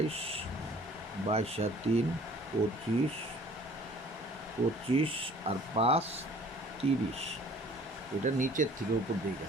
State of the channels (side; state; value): both; normal; correlation 0.52